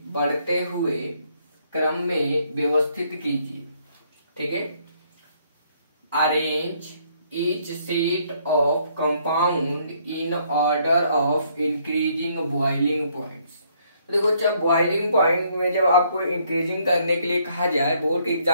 बढ़ते हुए क्रम में व्यवस्थित कीजिए। ठीक है, arrange each set of compound in order of increasing boiling points। तो देखो, जब बॉइलिंग पॉइंट में जब आपको इंक्रीजिंग करने के लिए कहा जाए बोर्ड के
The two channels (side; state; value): both; inverted; correlation -0.68